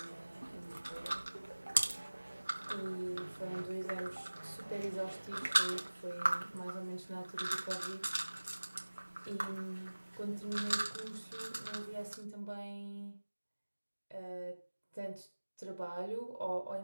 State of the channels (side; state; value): both; inverted; correlation -1.00